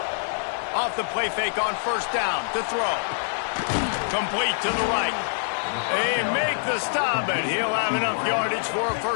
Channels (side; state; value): right; silent; 60 dB below the other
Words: Off the play fake on first down to throw. Complete to the right. They make the stop, and he'll have enough yardage for a